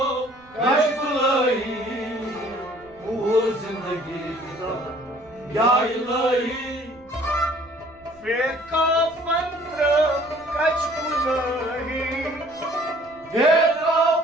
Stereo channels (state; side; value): noise; right; rumble, 28 dB below the sound